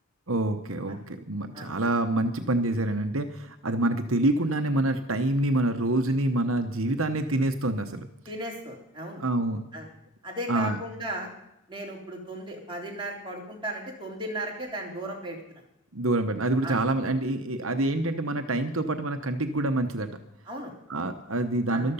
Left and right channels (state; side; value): normal; both; correlation 0.40